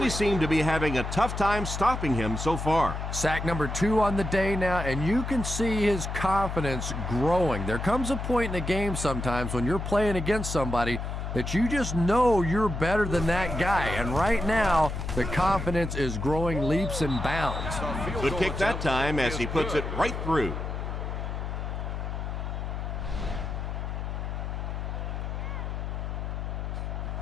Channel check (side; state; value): left; noise; hum, 4 dB below the sound